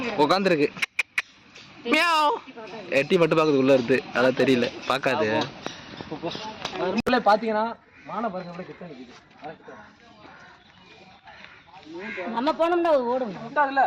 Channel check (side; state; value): both; identical; correlation 1.00